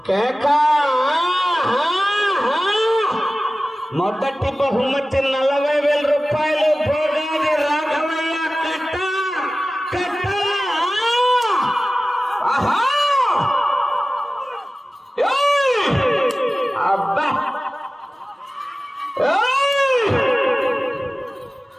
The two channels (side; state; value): both; normal; correlation 0.96